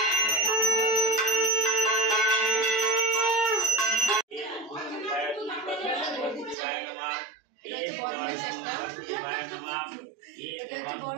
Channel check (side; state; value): left; drops out; at 6.6 s